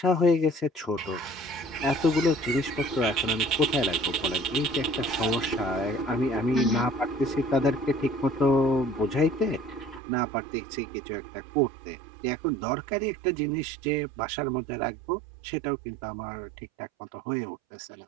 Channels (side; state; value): left; drops out; at 10.0 s